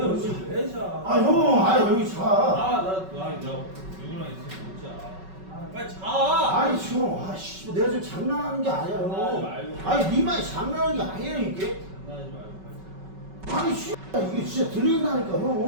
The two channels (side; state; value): left; late; 5.3 ms